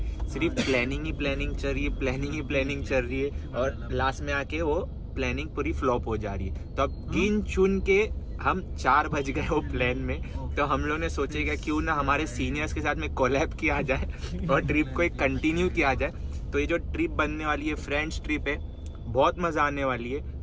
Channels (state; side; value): identical; both; correlation 1.00